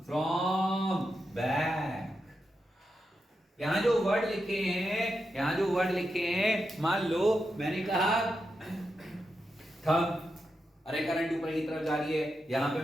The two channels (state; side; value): normal; both; correlation 0.87